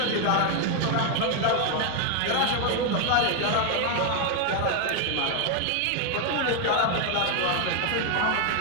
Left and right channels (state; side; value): different; both; correlation 0.00